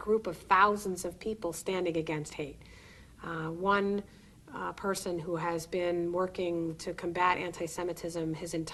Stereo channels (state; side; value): identical; both; correlation 1.00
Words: of thousands of people standing against hate. One person who has been working to combat anti-Semitism his